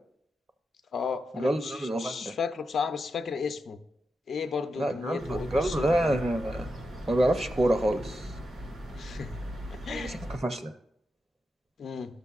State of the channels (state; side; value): normal; both; correlation 0.87